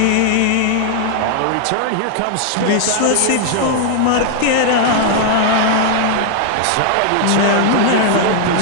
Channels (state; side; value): different; both; correlation 0.00